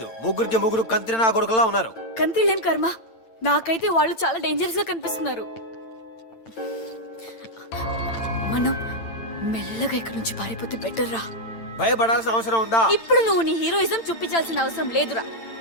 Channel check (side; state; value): right; late; 8.9 ms